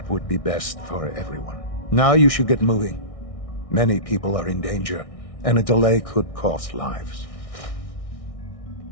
would be best for everyone. Now you should get moving. Many people are in danger, and a delay could cost lives.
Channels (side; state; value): right; late; 1.6 ms